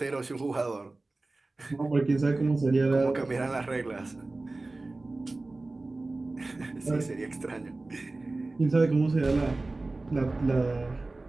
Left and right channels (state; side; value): quieter; left; 3.2 dB